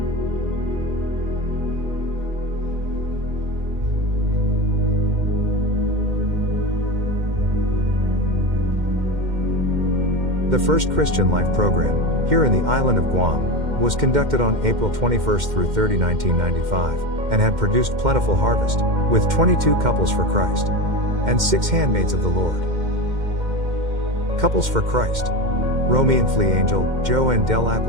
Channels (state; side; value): late; left; 2.1 ms